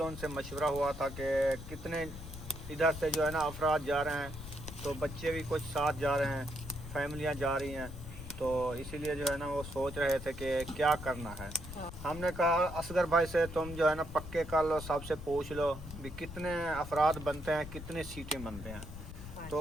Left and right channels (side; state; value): left; noise; rumble, 11 dB below the sound